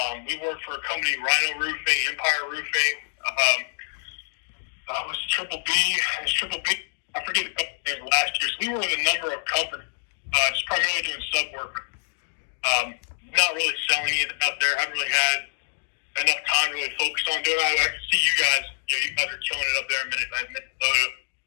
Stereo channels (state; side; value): silent; right; digital silence